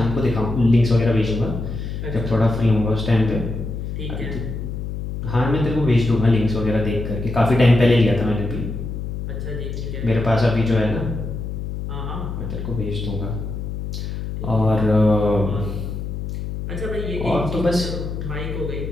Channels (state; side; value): noise; left; hum, 5 dB below the sound